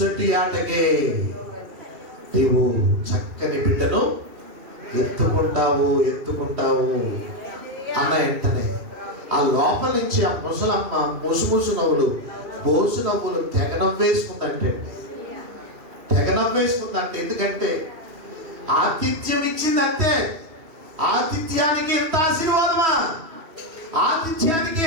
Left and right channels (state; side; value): late; left; 3.1 ms